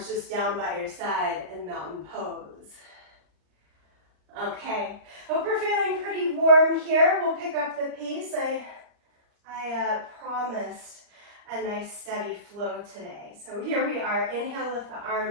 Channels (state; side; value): late; left; 39 ms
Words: just down by your side in mountain pose. Okay, hope we're feeling pretty warm here. We'll pick up the pace. I promised a nice steady flow today. So here we are. Inhale, lift the